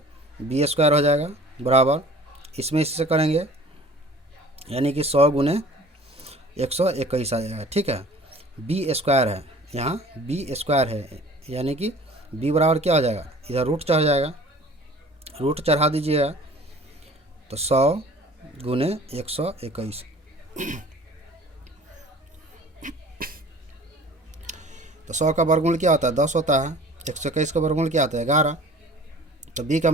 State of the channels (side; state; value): both; normal; correlation 0.46